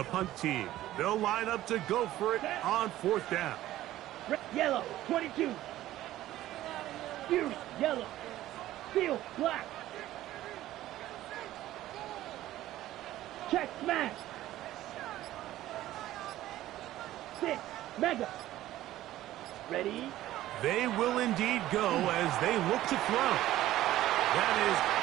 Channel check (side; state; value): left; quieter; 14.6 dB